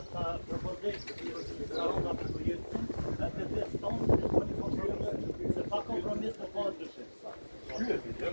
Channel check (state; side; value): inverted; both; correlation -1.00